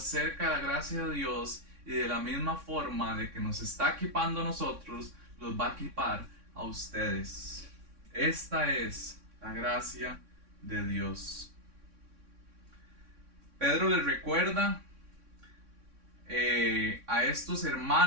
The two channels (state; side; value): late; left; 3.6 ms